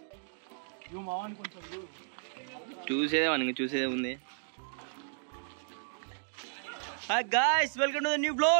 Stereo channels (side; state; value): left; silent; digital silence